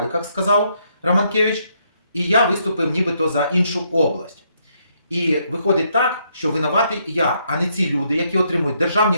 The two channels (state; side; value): inverted; both; correlation -0.74